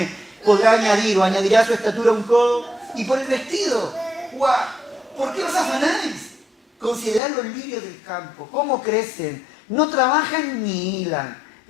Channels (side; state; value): right; drops out; at 7.2 s